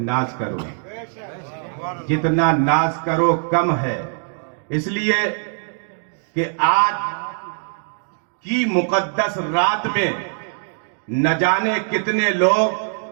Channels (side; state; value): left; silent; 65 dB below the other